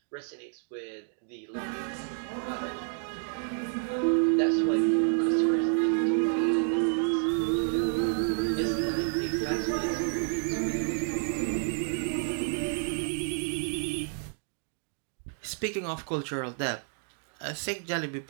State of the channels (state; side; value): silent; left; digital silence